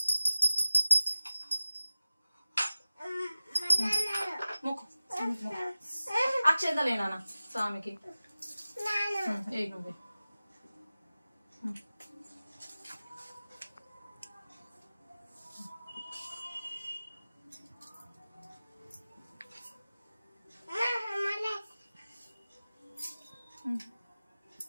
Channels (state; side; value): inverted; both; correlation -0.97